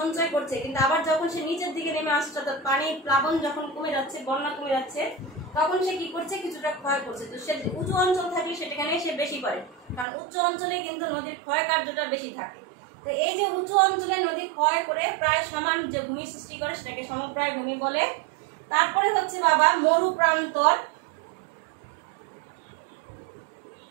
করছে, কিন্তু আবার যখন সে নিচের দিকে নেমে আসছে, অর্থাৎ পানি প্লাবন যখন কমে যাচ্ছে, বন্যা কমে যাচ্ছে, তখন সে কি করছে? কিছুটা ক্ষয় করছে। তো সে উঁচু অঞ্চল থাকলে সেটাখানে সে বেশি করে, কারণ উচ্চ অঞ্চলে কিন্তু নদীর ক্ষয় কার্যটা বেশি থাকে। তো এই যে উঁচু অঞ্চলে নদী ক্ষয় করে প্রায় সমান যে ভূমি সৃষ্টি করে, সেটাকে সমপ্রায় ভূমি বলে। তারপরে হচ্ছে বাবা মরু প্রান্তর।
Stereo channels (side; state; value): left; drops out; at 10.1 s